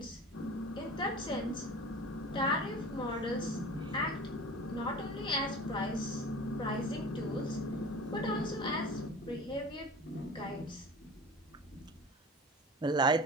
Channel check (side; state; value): both; normal; correlation 0.37